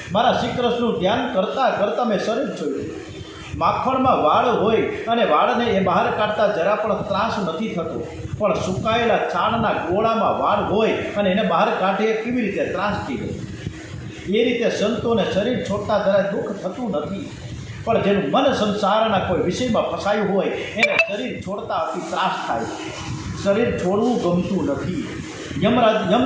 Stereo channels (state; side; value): identical; both; correlation 1.00